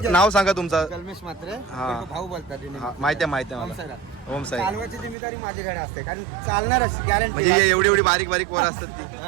नाव सांगा तुमचं. कलमेश मात्रे. हा. भाऊ बोलतात. हा, माहिती आहे माहिती आहे मला. साईराम. ओम साई. चालवायची जिम्मेदारी माझ्याकडे असते, कारण चालणारच गॅरंटी. म्हणजे एवढी एवढी बारीक बारीक पोरं असतात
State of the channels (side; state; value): left; drops out; at 5.2 s